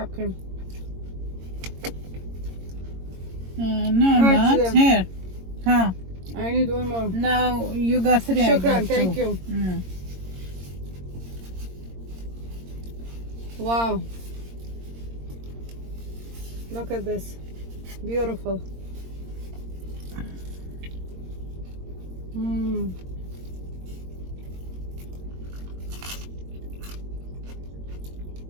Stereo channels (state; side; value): late; left; 22 ms